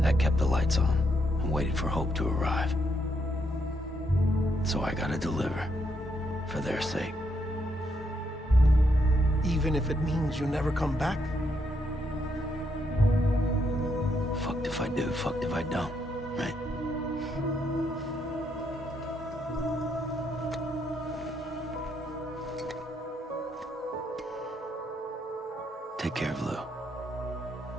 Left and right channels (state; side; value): normal; both; correlation 0.77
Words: That kept the lights on, and waited for hope to arrive. So I gotta deliver, for their sake. Even if it means you never come back? Fucked if I do, fucked if I don't, right? Take care of Lou.